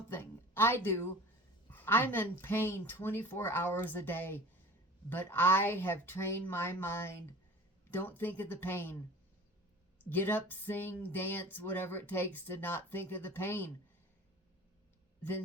I do. I'm in pain 24 hours a day, but I have trained my mind. Don't think of the pain. Get up, sing, dance, whatever it takes to not think of the pain.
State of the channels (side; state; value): both; normal; correlation 0.40